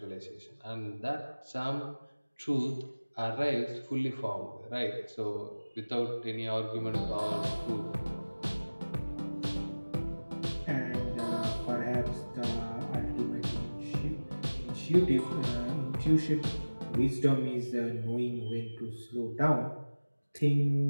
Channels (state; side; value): inverted; both; correlation -1.00